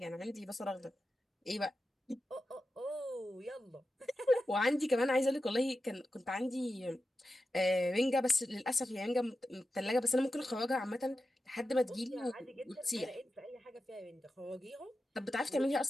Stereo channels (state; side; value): normal; both; correlation 0.91